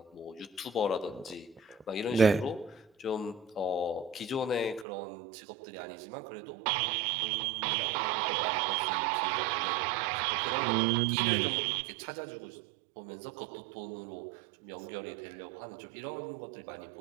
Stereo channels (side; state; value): left; drops out; at 4.9 s